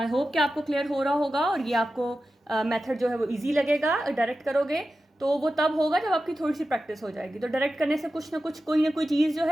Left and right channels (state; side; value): normal; both; correlation 0.92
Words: होप कि आपको क्लियर हो रहा होगा, और ये आपको मेथड जो है वो इजी लगेगा। डायरेक्ट करोगे तो वो तब होगा जब आपकी थोड़ी सी प्रैक्टिस हो जाएगी। तो डायरेक्ट करने से कुछ ना कुछ कोई ना कोई चीज़ जो